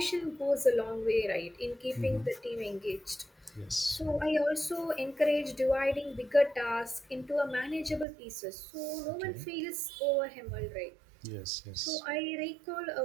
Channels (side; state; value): left; drops out; at 8.1 s